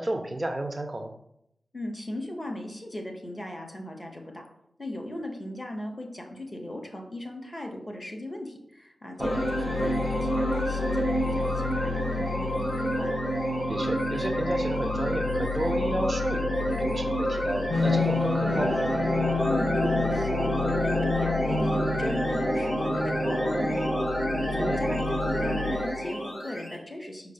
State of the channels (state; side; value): normal; both; correlation 0.88